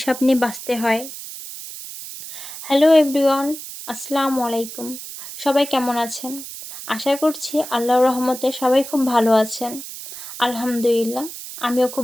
নিয়ে বাঁচতে হয়। হ্যালো এভরিওয়ান, আসসালামু আলাইকুম। সবাই কেমন আছেন? আশা করছি আল্লাহর রহমতে সবাই খুব ভালো আছেন। আলহামদুলিল্লাহ, আমিও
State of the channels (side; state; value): right; noise; hiss, 11 dB below the sound